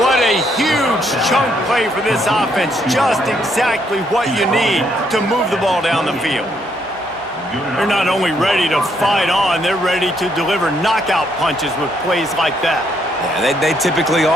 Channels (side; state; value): both; normal; correlation 0.72